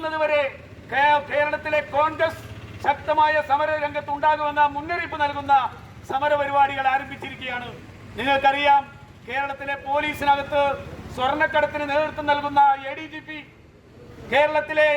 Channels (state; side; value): identical; both; correlation 1.00